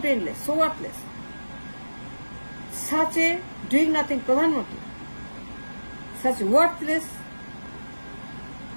brainless, so worthless, such a doing nothing প্রধানমন্ত্রী, such worthless,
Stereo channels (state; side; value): inverted; both; correlation -1.00